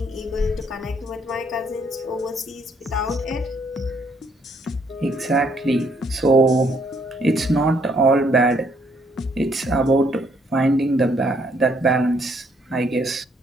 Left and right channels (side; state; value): both; normal; correlation 0.69